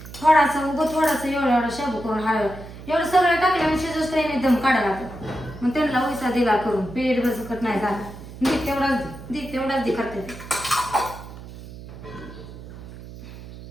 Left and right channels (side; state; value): right; noise; hum, 14 dB below the sound